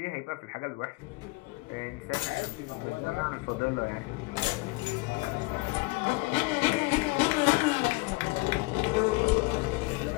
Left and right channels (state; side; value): quieter; right; 24.8 dB